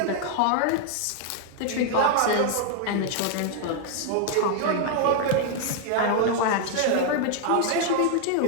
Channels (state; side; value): different; both; correlation 0.00